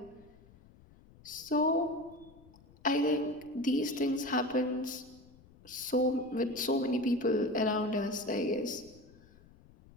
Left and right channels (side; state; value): left; noise; rumble, 25 dB below the sound